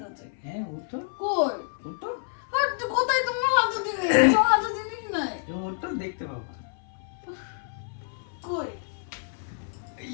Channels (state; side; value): silent; right; 57 dB below the other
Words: আছে? হ্যাঁ, ওঠো, কই ওঠো, আর কোথায় তোমার হাতে জিনিস? তোমার হাতে জিনিস নাই। তুমি ওঠো, দেখতে পাবো। কই